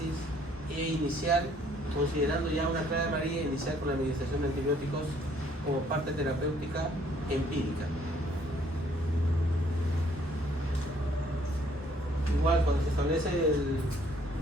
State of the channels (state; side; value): normal; both; correlation 0.63